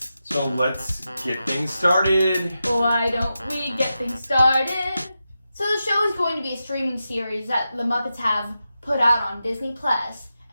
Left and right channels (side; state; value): both; inverted; correlation -0.90